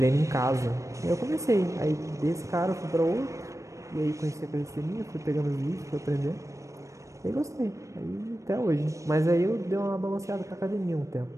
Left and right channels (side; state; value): left; late; 0.15 ms